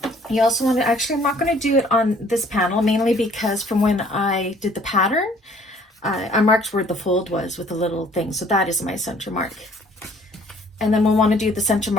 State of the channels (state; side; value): normal; both; correlation 0.57